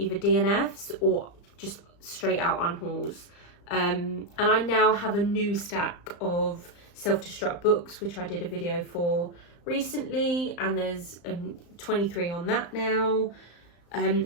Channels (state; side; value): late; right; 35 ms